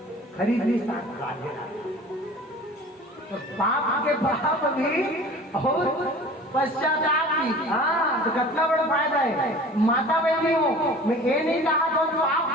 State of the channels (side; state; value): both; normal; correlation 0.43